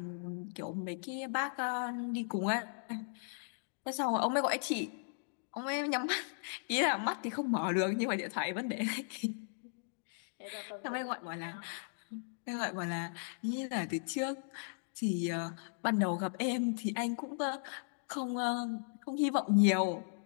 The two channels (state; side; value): silent; right; digital silence